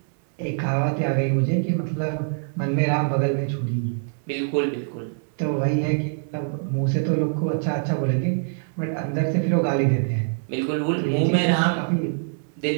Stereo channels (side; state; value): left; silent; 62 dB below the other